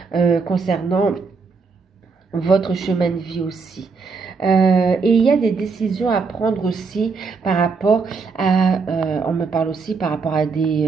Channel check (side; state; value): left; quieter; 4.7 dB